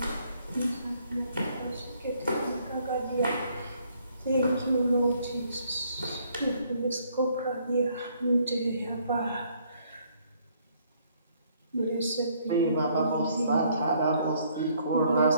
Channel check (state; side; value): inverted; both; correlation -0.67